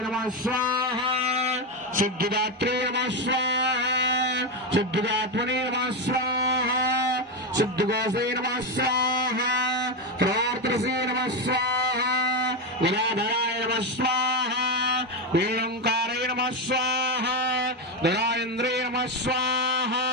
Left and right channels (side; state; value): both; normal; correlation 0.11